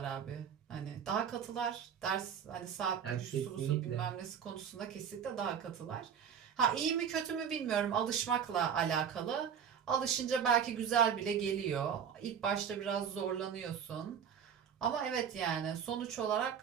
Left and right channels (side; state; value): left; quieter; 7.9 dB